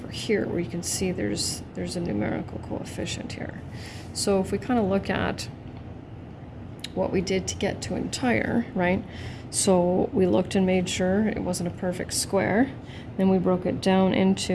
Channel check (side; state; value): both; identical; correlation 1.00